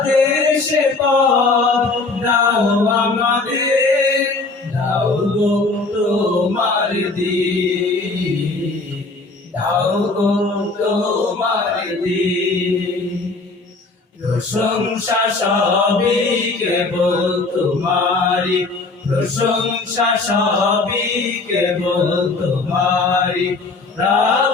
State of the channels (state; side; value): quieter; right; 3.6 dB